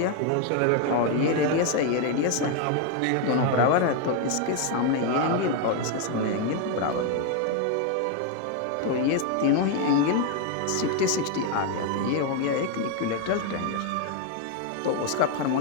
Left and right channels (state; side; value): different; both; correlation 0.01